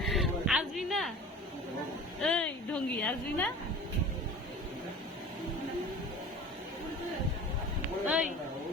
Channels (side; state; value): both; normal; correlation 0.39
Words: আসবি না? এই ঢঙ্গি, আসবি না? ওই